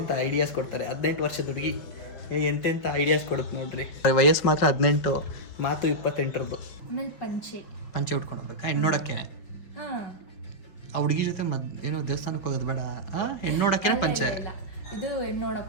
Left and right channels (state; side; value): late; right; 5.1 ms